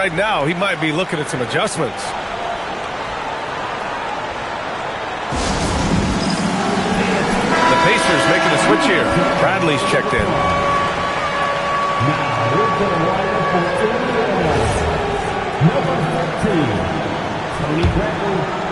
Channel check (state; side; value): identical; both; correlation 1.00